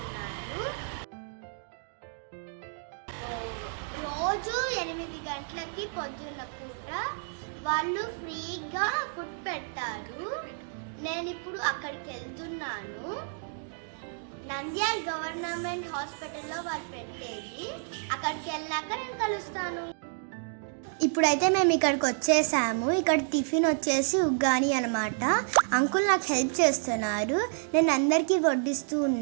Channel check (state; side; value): silent; left; digital silence